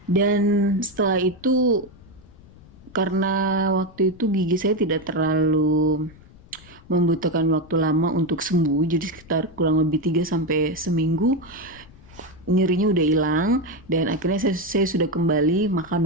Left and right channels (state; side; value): noise; left; rumble, 23 dB below the sound